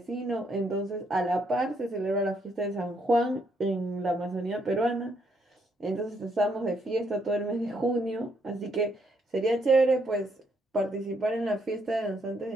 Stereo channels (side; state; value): both; normal; correlation 0.73